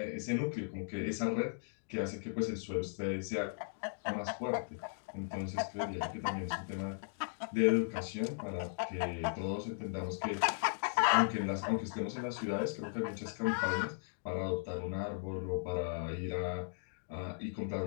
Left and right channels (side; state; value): right; silent; digital silence